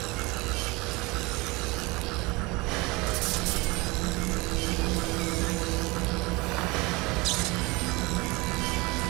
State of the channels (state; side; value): quieter; left; 24.4 dB